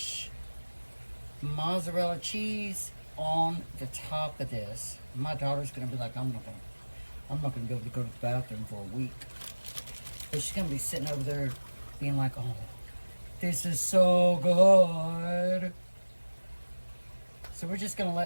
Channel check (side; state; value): both; inverted; correlation -1.00